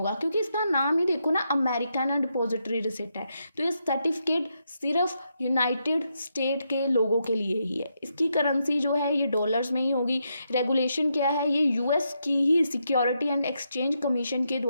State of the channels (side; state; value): both; inverted; correlation -0.81